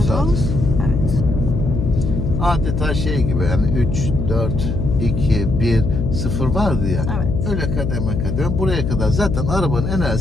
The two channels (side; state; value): left; noise; hum, 2 dB below the sound